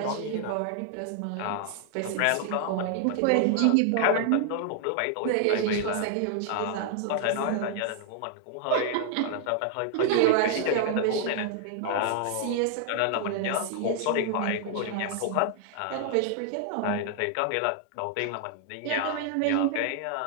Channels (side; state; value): both; different; correlation 0.00